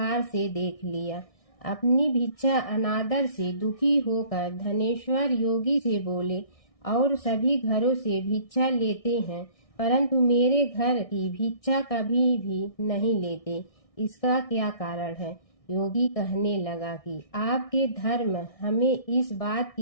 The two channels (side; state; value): right; late; 1.6 ms